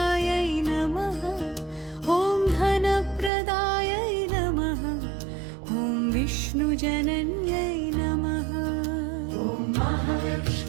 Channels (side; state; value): left; drops out; at 3.3 s